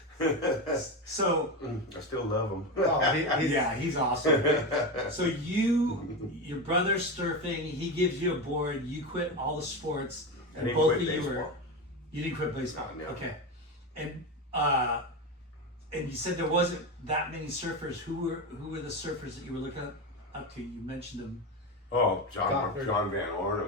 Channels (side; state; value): both; normal; correlation 0.18